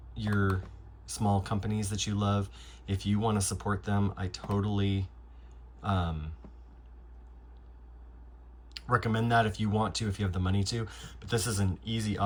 your small companies that you love. If you want to support them, I totally recommend that if you want to, if you have the money to. But this is an easy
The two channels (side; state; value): both; identical; correlation 1.00